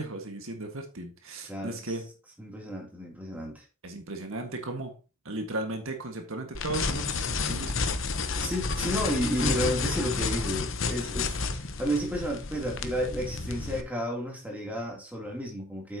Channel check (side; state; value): both; normal; correlation 0.51